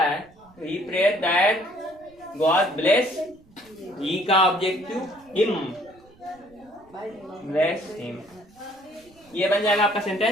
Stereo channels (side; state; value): right; noise; rumble, 29 dB below the sound